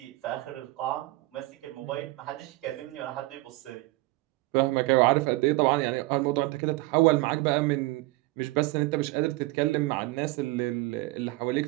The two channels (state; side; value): quieter; left; 20.6 dB